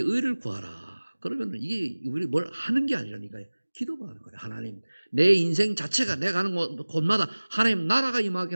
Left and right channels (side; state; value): both; inverted; correlation -1.00